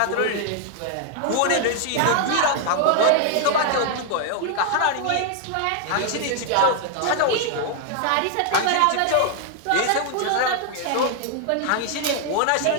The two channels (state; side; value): different; both; correlation 0.00